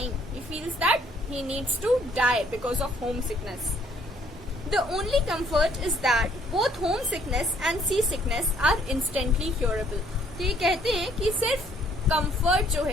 He feels that he needs to die because of homesickness. The only comfort is that both homesickness and seasickness are instantly curable. तो ये कहते हैं कि सिर्फ comfort जो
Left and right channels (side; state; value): both; normal; correlation 0.64